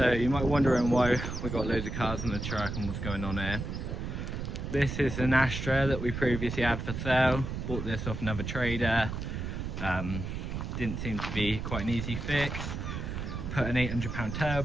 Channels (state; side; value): noise; right; rumble, 5 dB below the sound